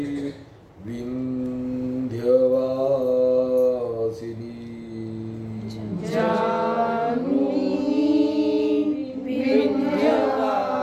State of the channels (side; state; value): both; identical; correlation 1.00